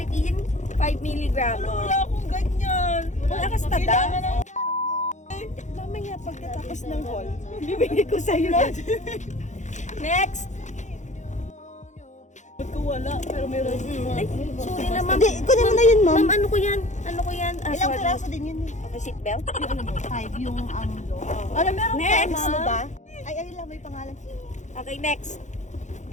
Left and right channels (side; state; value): right; late; 0.35 ms